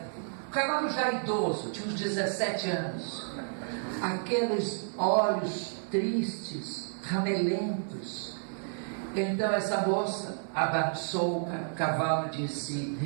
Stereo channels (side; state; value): left; silent; digital silence